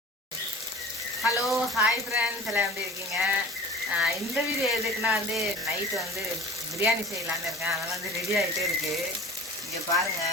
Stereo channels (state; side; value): normal; both; correlation 0.41